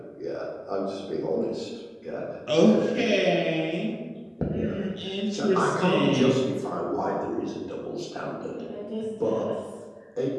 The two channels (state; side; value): identical; both; correlation 1.00